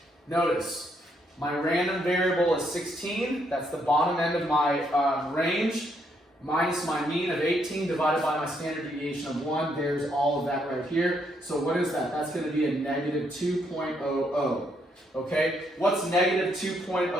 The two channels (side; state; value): both; normal; correlation 0.74